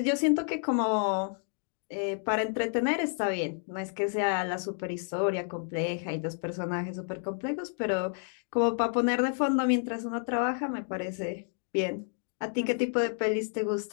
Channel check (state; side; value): silent; right; 58 dB below the other